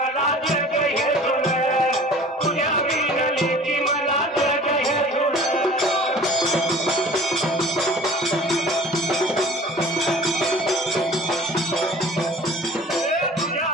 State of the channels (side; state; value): both; normal; correlation 0.45